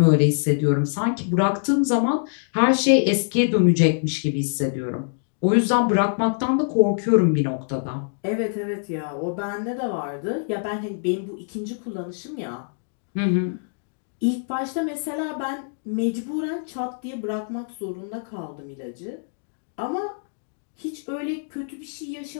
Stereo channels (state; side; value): silent; right; digital silence